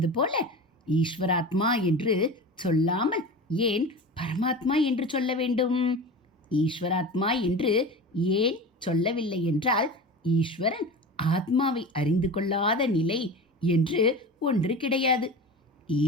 போல ஈஸ்வராத்மா என்று சொல்லாமல் ஏன் பரமாத்மா என்று சொல்ல வேண்டும்? ஈஸ்வராத்மா என்று ஏன் சொல்லவில்லை என்றால், ஈஸ்வரன் ஆத்மாவை அறிந்து கொள்ளாத நிலை என்று ஒன்று கிடையாது.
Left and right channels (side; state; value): both; normal; correlation 0.31